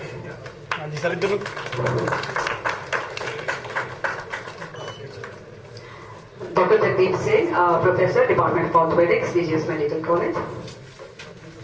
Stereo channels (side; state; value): both; identical; correlation 1.00